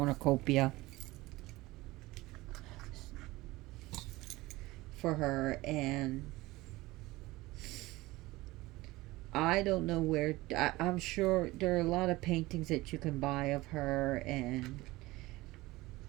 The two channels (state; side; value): quieter; left; 19.7 dB